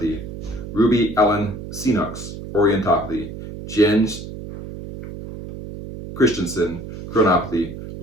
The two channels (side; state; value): right; noise; hum, 11 dB below the sound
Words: Ruby Ellen Sinox, orientopathy. Jens Christensen, chronopathy.